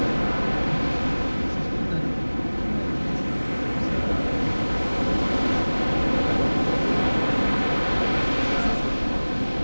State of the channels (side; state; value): both; inverted; correlation -1.00